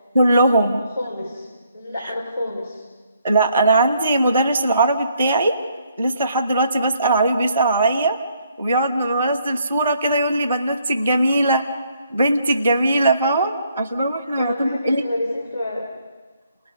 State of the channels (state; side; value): inverted; both; correlation -0.70